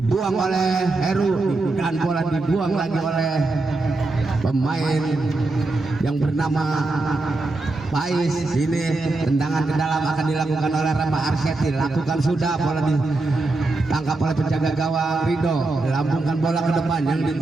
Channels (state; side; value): quieter; left; 3.1 dB